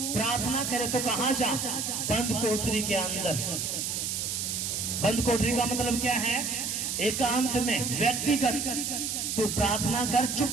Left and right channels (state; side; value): noise; right; hiss, 2 dB below the sound